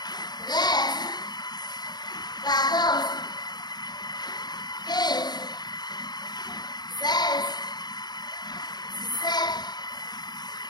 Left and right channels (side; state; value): right; late; 0.20 ms